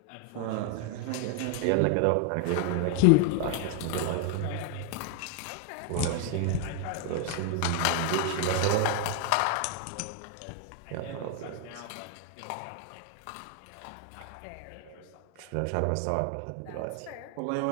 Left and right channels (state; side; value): different; both; correlation 0.00